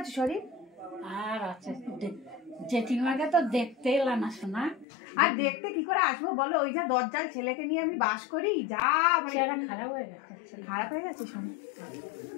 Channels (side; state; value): right; drops out; at 4.9 s